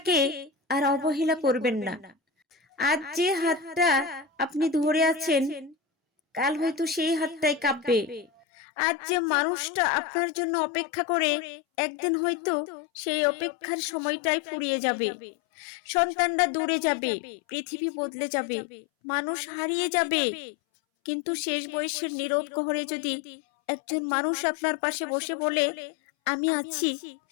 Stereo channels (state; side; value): drops out; right; at 8.5 s